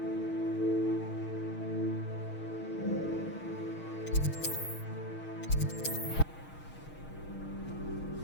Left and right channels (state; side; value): late; right; 6.4 ms